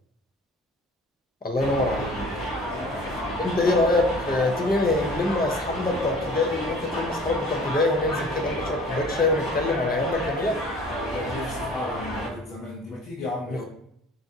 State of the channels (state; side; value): normal; both; correlation 0.47